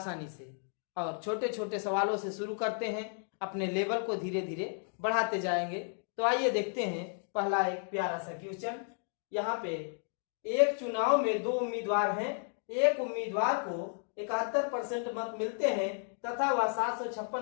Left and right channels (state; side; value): silent; right; 56 dB below the other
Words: से। और छोटे छोटे सवालों से शुरू करते हैं, अपने लेवल को धीरे धीरे बढ़ाते जाएंगे। तो आइए देखते हैं पहला एक प्यारा सा क्वेश्चन। यहाँ पे एक चुनाव में दो उम्मीदवार हैं, एक उम्मीदवार को 71% मत मिलते हैं तथा वह 756